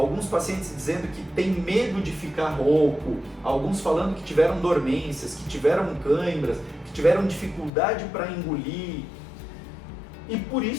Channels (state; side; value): drops out; right; at 7.7 s